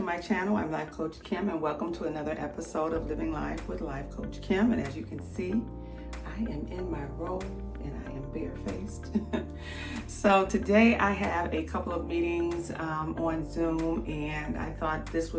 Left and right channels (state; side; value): identical; both; correlation 1.00